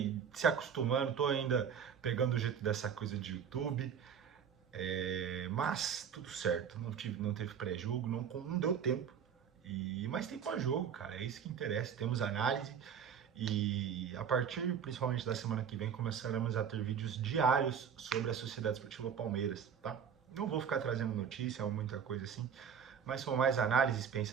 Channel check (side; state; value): left; quieter; 7.6 dB